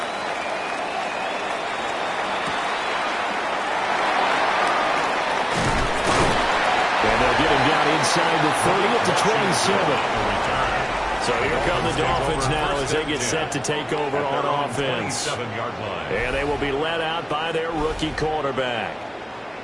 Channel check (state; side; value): identical; both; correlation 1.00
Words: And they'll get him down inside the 30 at the 27. So here come the Dolphins now as they get set to take over on offense. And they will be led out by their rookie quarterback.